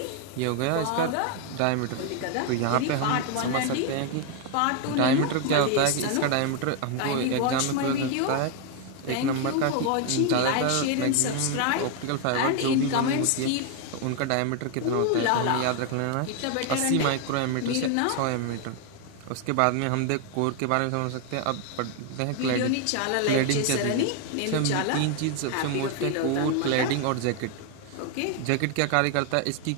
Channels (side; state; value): both; different; correlation 0.01